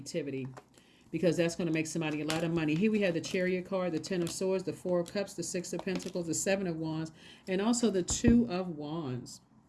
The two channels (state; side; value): identical; both; correlation 1.00